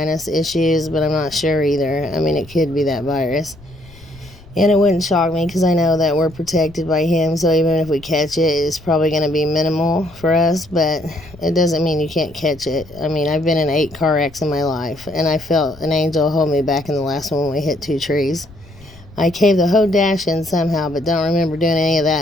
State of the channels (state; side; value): noise; left; rumble, 23 dB below the sound